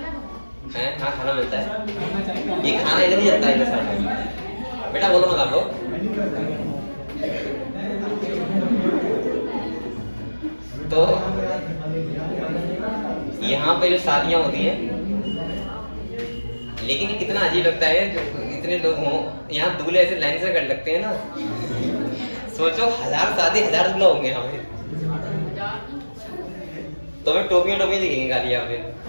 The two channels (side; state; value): both; inverted; correlation -1.00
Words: हाँ खाना मिलता है, ये खाना इधर ही जाता है इधर साइड में। बेटा बोलो मत आपको, तो यहाँ पे जो शादियां होती हैं, लेकिन ये कितना अजीब लगता है जो इतने लोग हों, यहाँ दूल्हे ऐसे लाइन से कर लगते हैं ना, सोचो 1000 शादी 1000 दूल्हा होंगे यहाँ पे, तो हमें टोपियां दिखेंगे खाली यहाँ पे।